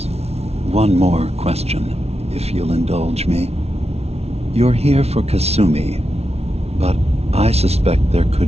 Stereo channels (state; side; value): late; left; 0.31 ms